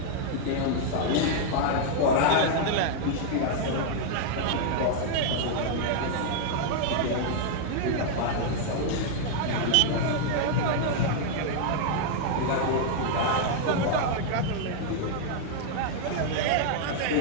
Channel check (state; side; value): different; both; correlation -0.01